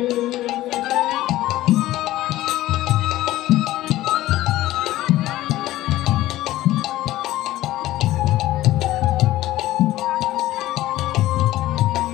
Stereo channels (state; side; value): quieter; right; 15.6 dB